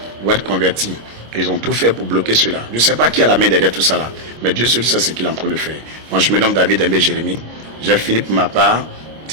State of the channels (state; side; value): late; left; 26 ms